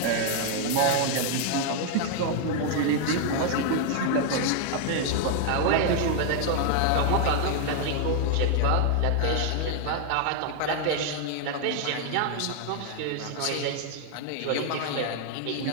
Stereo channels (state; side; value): different; both; correlation 0.00